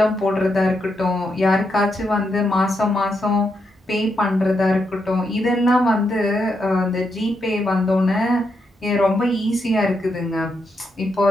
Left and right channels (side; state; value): both; normal; correlation 0.82